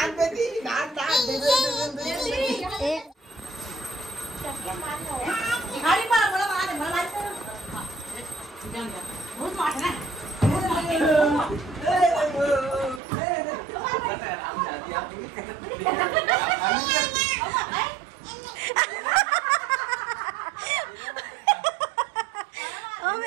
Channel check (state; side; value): drops out; left; at 13.0 s